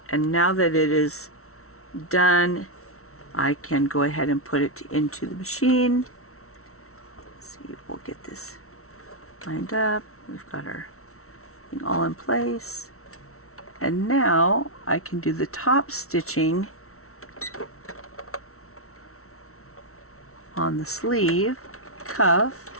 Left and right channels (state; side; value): late; right; 0.63 ms